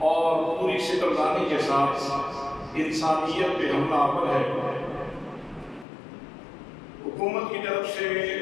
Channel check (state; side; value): drops out; right; at 5.9 s